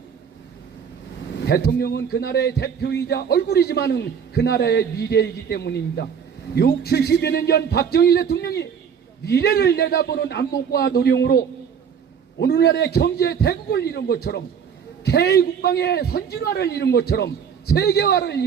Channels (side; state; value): left; quieter; 7.3 dB